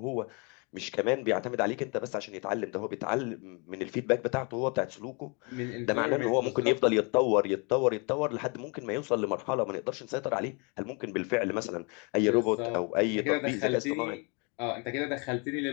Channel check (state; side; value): quieter; right; 32.8 dB